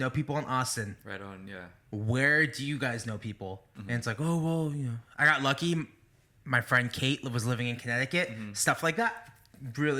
people in Austin. Right on, yeah. Where do you guys know people? And it's like, oh, well, you know. I got lucky. My friend Kate was living in Connecticut. Stuff like that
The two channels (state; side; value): identical; both; correlation 1.00